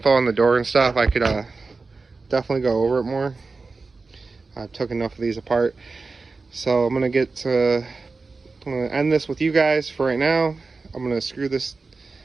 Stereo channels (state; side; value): quieter; left; 4.0 dB